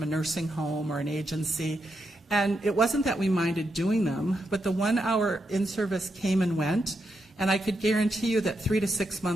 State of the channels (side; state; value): both; normal; correlation 0.84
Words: a nursing home or an agency? And it wasn't that we minded doing them, but the 1-hour in-service came and went, and I could guarantee you that 3 to 6